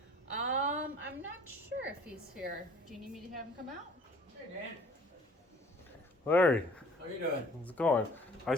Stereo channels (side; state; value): both; normal; correlation 0.52